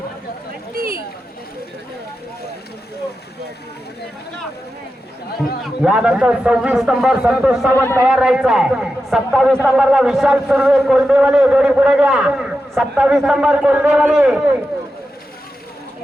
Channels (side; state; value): both; normal; correlation 0.90